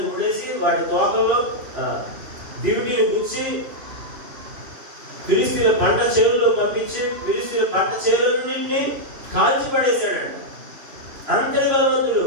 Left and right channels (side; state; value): left; late; 3.0 ms